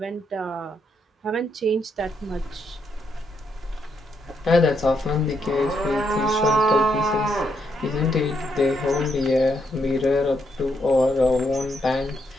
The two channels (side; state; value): both; normal; correlation 0.77